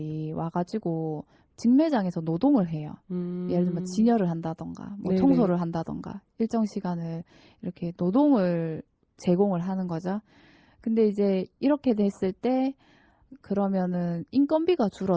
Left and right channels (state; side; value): identical; both; correlation 1.00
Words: 와가지고 직매장에서 노동을 해요. 예를 들면 음, 진열을 한다던가, 뭐 네네. 청소를 한다던가, 일정 시간을 이렇게 노동을 제공을 하는 거죠. 근데 이제 이렇게 됐을 때 그러면은 인건비가